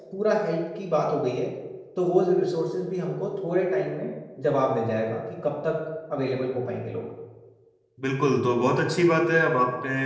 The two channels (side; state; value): both; identical; correlation 1.00